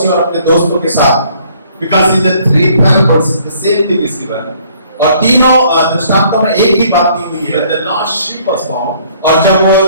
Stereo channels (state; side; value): inverted; both; correlation -0.61